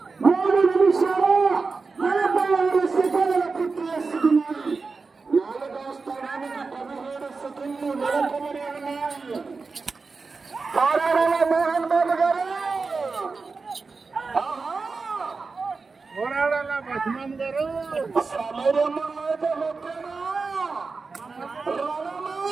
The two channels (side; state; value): left; quieter; 4.3 dB